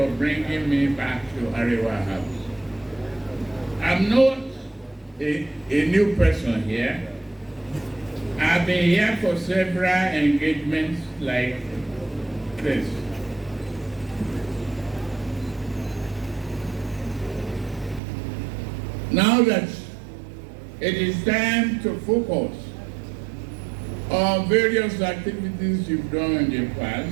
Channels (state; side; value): drops out; left; at 18.0 s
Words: bringing me back to Arewa House. I'm not a new person here. I've been here for several engagements like this. Now that it is time to focus on various activities you've done in the